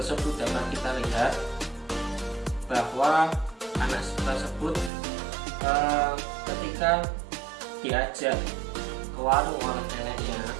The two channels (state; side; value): drops out; left; at 4.9 s